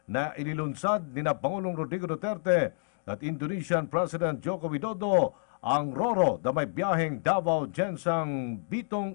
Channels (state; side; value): silent; right; digital silence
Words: na inilunsad ni na Pangulong Rodrigo Duterte at Indonesian President Joko Widodo ang Roro na may biyaheng Davao Gensang Bitong,